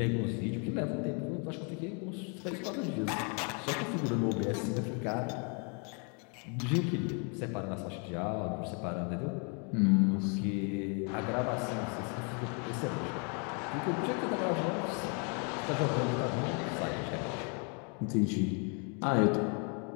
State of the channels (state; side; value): quieter; right; 36.9 dB